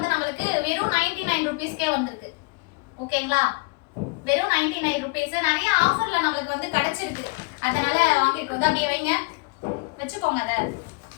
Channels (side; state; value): right; quieter; 28.1 dB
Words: நம்மளுக்கு வெறும் 99 rupeesக்கே வந்திருக்கு. ஓகேங்களா, வெறும் 99 rupees. நிறைய ஆஃபர்ல நம்மளுக்கு வந்து கிடைச்சிருக்கு. அதனால வாங்கிருக்கோம். அப்படியே வைங்க, வச்சுக்கோங்க. அத